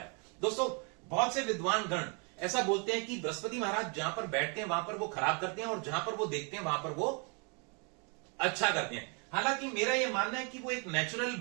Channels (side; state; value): left; quieter; 34.8 dB